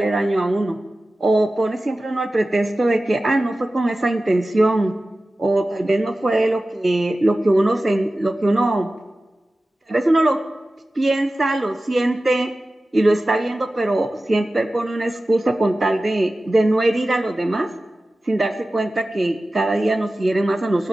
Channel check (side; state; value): both; normal; correlation 0.96